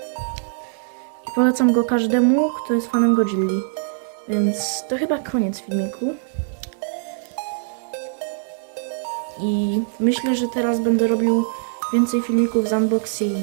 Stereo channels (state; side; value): silent; left; digital silence